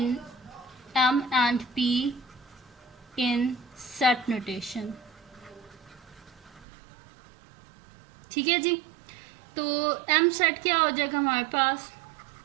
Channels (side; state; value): left; drops out; at 6.7 s